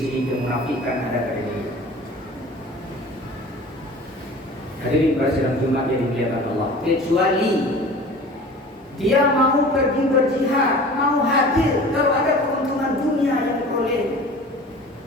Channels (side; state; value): both; normal; correlation 0.41